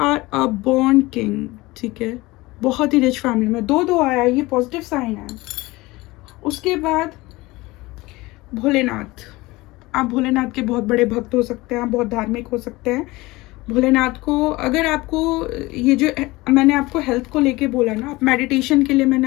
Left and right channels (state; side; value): quieter; right; 20.9 dB